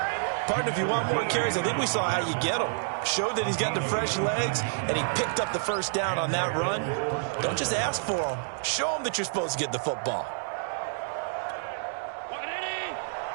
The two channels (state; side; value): silent; left; 59 dB below the other